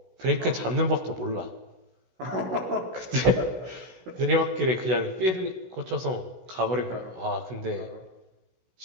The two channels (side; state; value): left; late; 16 ms